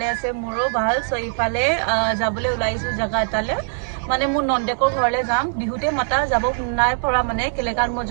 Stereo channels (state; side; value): silent; left; 63 dB below the other